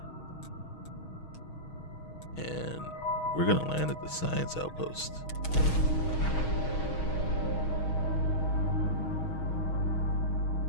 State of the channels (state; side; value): late; right; 6.3 ms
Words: and we're gonna land at the science outpost.